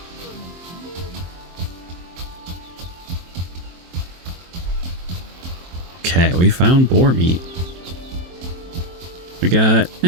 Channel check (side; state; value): left; late; 23 ms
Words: Okay, we found boar meat. We got